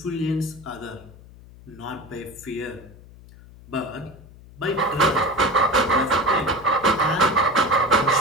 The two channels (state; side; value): noise; left; hum, 21 dB below the sound